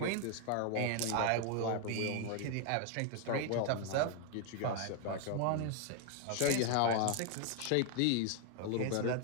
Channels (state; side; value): different; both; correlation 0.01